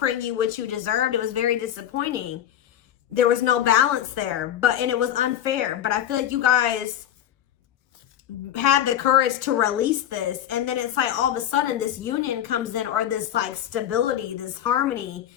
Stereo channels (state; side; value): quieter; right; 11.0 dB